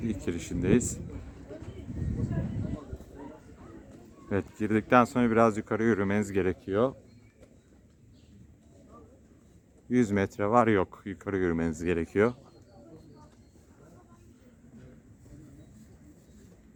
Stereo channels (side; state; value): both; identical; correlation 1.00